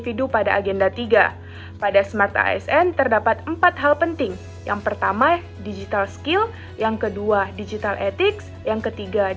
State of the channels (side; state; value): both; identical; correlation 1.00